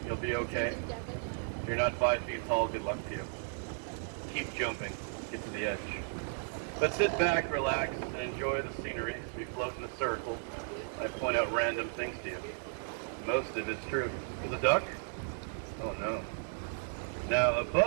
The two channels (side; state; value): left; silent; digital silence